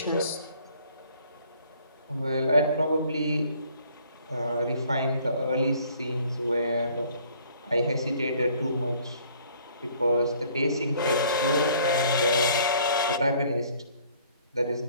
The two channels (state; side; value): inverted; both; correlation -0.58